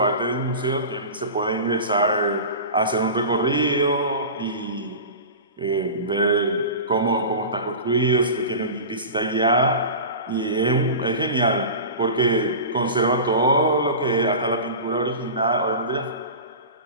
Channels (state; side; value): inverted; both; correlation -0.31